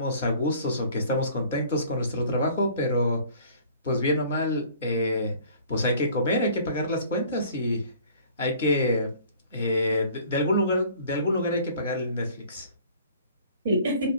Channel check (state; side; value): inverted; both; correlation -0.52